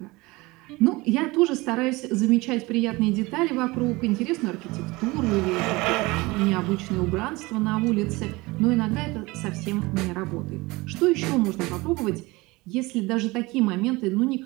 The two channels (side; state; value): left; quieter; 22.5 dB